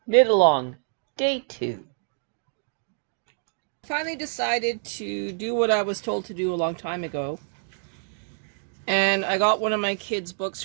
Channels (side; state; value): left; silent; digital silence